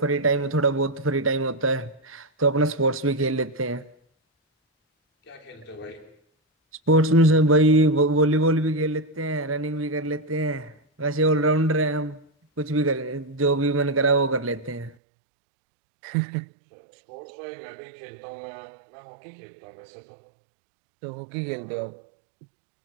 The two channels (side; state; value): left; drops out; at 15.0 s